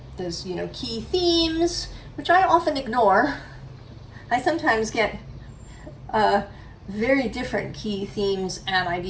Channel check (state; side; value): identical; both; correlation 1.00